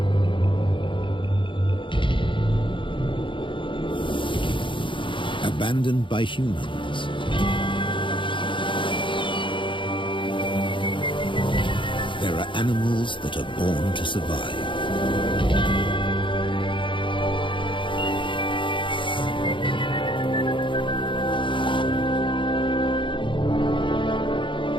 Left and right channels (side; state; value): right; late; 0.24 ms